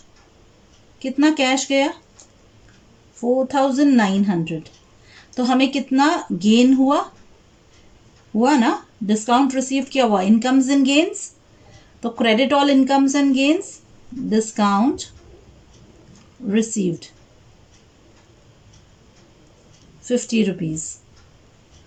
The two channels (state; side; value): identical; both; correlation 1.00